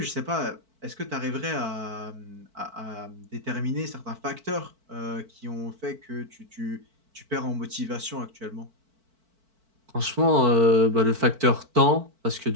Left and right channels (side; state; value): left; late; 4.5 ms